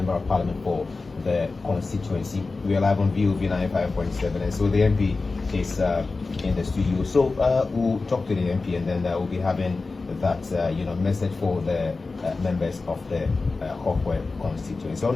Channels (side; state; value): right; quieter; 3.8 dB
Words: of Parliament for the constituency. We are live on VOV 95.7, and so the MP is in the studio. So we'll talk to the MP, and then we'll be having that message for the members of the Hohoe constituency. So